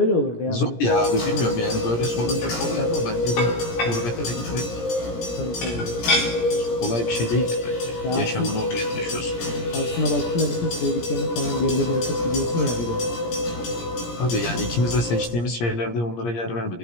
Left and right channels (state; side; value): late; right; 17 ms